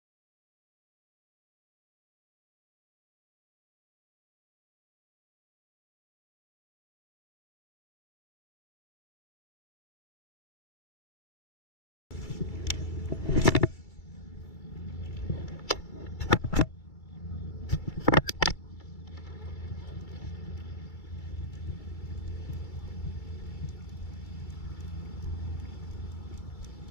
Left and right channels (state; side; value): late; right; 2.3 ms